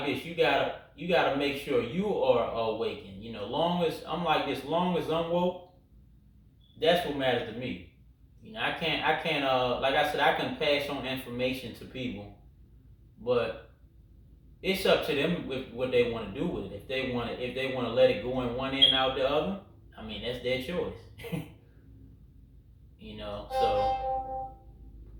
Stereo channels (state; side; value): identical; both; correlation 1.00